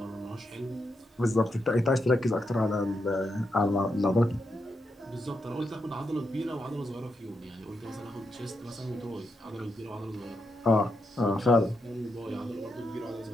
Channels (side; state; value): both; normal; correlation 0.83